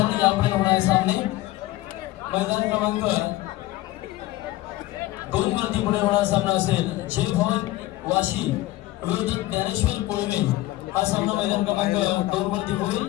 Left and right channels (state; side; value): quieter; right; 17.0 dB